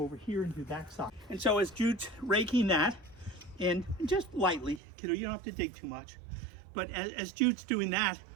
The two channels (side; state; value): left; drops out; at 4.8 s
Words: over here and do that side. And so as Jude's raking that in, just lightly, kiddo, you don't have to dig too much, but as Jude's doing that,